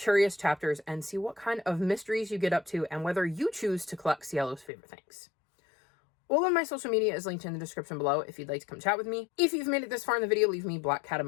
Chapters and see what kind of mysteries you get up to and whether you choose to collect Cielo's favorite things. All of my social media is linked in the description below if you'd like to come chat with me. If you've made it this far in the video, leave me black cat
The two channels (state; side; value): drops out; right; at 4.7 s